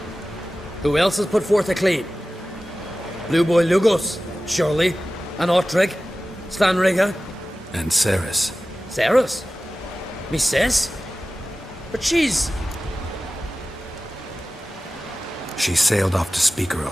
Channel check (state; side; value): normal; both; correlation 0.96